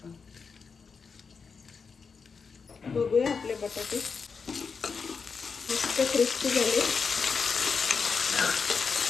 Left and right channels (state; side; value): quieter; right; 5.4 dB